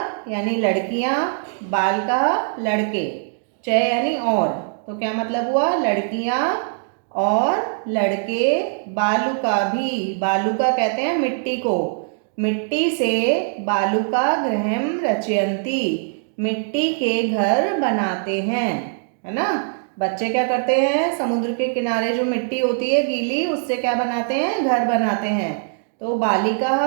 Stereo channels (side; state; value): left; silent; digital silence